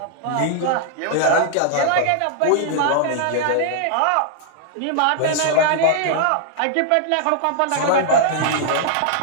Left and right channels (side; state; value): both; different; correlation -0.01